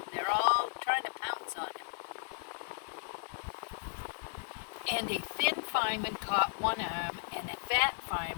they're all trying to pounce on him. And a thin fireman caught one arm and a fat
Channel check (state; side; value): silent; right; digital silence